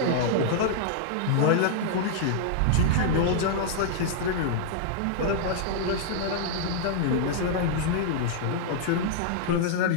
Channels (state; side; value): different; both; correlation -0.01